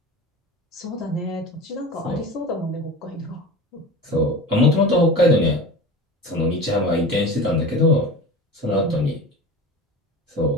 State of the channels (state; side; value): normal; both; correlation 0.33